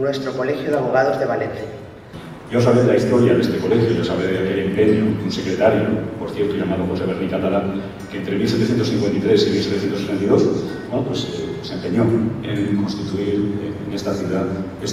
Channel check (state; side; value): identical; both; correlation 1.00